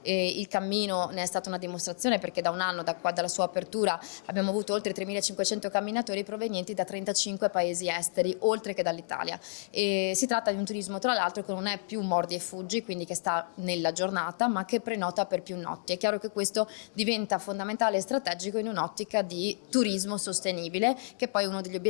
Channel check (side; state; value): right; silent; 57 dB below the other